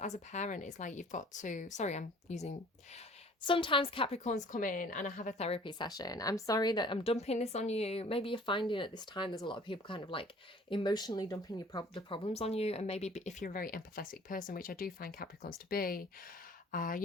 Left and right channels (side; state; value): both; normal; correlation 0.52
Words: a parent, it's like you've got to, sorry, I'm using, sometimes Capricorns come in and I have a therapy session. I'm sorry that I'm dumping this on you. Maybe you're finding at this time there's a lot of people kind of like emotionally dumping the problems on you. And maybe if you're a very empathetic person, which I do find Capricorns to be,